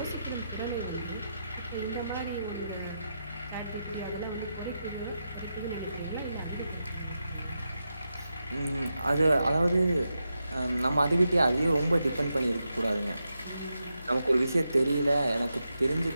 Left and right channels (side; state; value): both; inverted; correlation -0.87